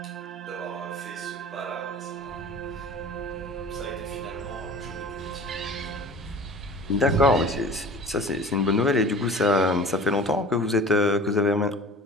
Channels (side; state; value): both; normal; correlation 0.41